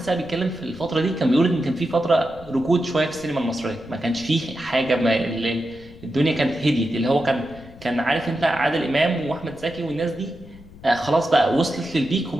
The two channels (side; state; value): left; noise; rumble, 20 dB below the sound